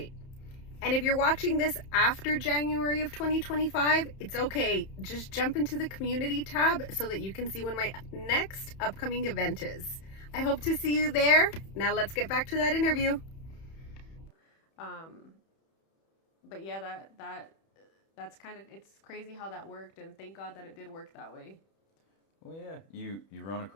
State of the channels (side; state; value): right; late; 31 ms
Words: And if you're watching this after January of 2025, it's okay. Just jump into the community tab so that you can see when my next upcoming event is. I hope to see you there. Now let's get back to that interview. But yeah, that's kind of, it's crazy how that worked, and thank God that it did work that way. Well, yeah, you run